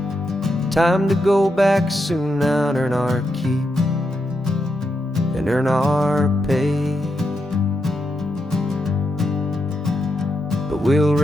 Time to go back soon now and earn our keep and earn our pay. But we'll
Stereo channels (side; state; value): both; normal; correlation 0.84